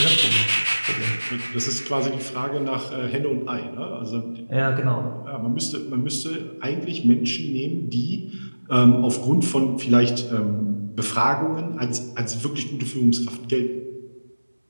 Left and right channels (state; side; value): inverted; both; correlation -1.00